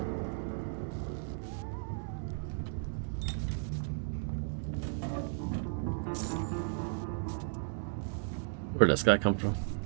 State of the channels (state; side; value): silent; left; digital silence